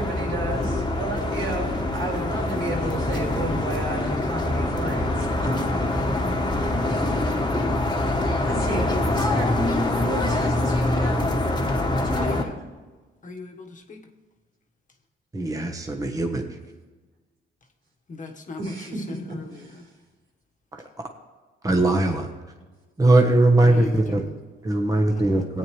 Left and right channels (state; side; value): normal; both; correlation 0.75